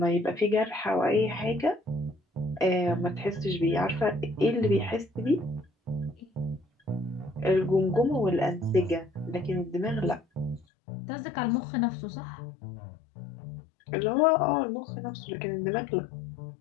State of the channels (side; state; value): right; drops out; at 10.7 s